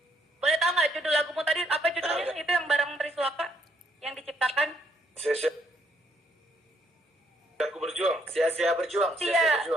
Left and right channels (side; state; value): both; normal; correlation 0.71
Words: boleh tahu nggak judul lagumu tadi apa judulnya? Itu yang bareng Triswaka yang diciptakan. Aku berjuang. Sia-sia berjuang.